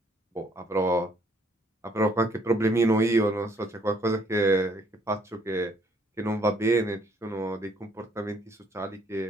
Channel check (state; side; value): normal; both; correlation 0.65